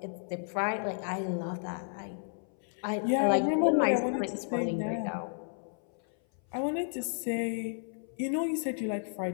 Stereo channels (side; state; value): right; silent; 56 dB below the other